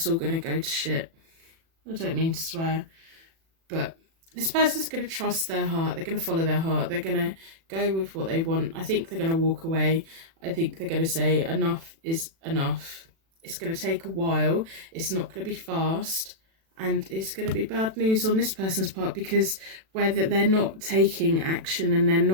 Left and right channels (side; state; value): left; late; 36 ms